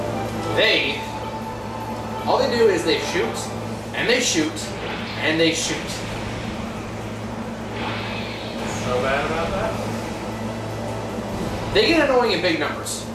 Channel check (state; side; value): identical; both; correlation 1.00